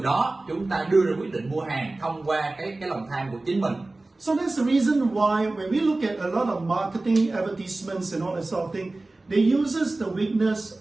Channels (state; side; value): quieter; left; 3.0 dB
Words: đó chúng ta đưa ra quyết định mua hàng thông qua cái lòng tham của chính mình. So that's the reason why when we look at a lot of marketing advertisements and all that sort of thing, they uses the